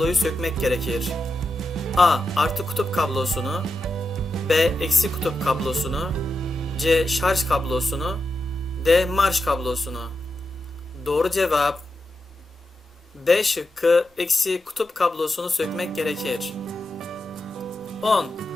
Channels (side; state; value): both; normal; correlation 0.88